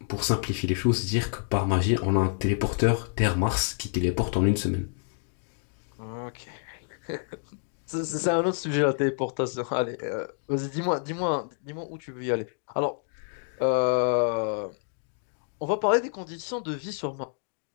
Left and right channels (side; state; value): right; silent; 59 dB below the other